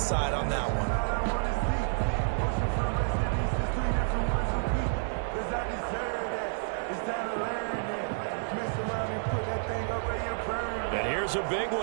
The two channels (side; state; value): left; silent; digital silence